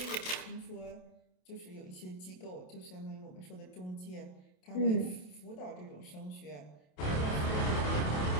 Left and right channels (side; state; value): right; late; 27 ms